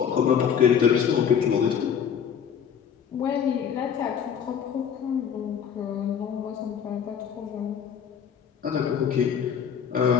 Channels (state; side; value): quieter; right; 7.8 dB